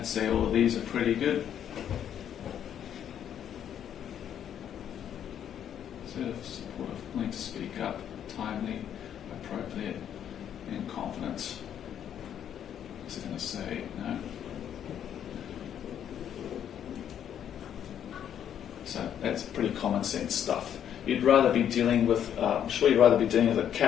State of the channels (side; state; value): right; quieter; 9.5 dB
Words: say all of these are pretty good. Assertive, supportive, willing to speak up, timely, appropriate, and confident. What's it going to say? No. So that's pretty common sense stuff. You'd rather be dealing with, I'm sure you'd rather be dealing with a